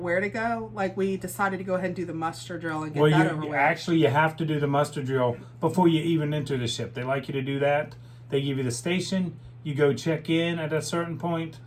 to go. Like, we decided to go ahead and do the muster drill and get that over with. Actually, you have to do the muster drill before you even enter the ship. They like you to do that. They give you the station. You go check in at a certain point,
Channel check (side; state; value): both; identical; correlation 1.00